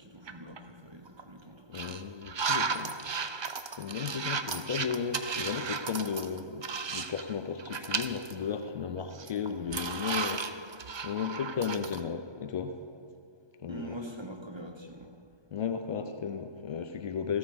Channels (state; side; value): late; left; 1.2 ms